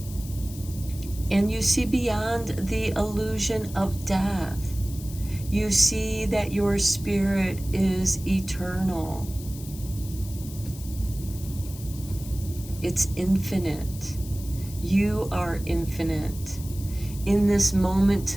you see beyond the illusion of death. You see that your spirit is eternal. It's infinite. You are infinite. In this moment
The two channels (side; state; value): left; noise; hiss, 16 dB below the sound